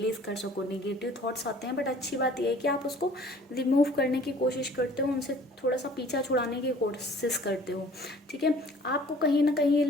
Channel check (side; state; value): both; normal; correlation 0.51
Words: कर सको। नेगेटिव थॉट्स आते हैं, बट अच्छी बात यह है कि आप उसको रिमूव करने की कोशिश करते हो, उनसे थोड़ा सा पीछा छुड़ाने की कोशिश करते हो, ठीक है। आपको कहीं ना कहीं ये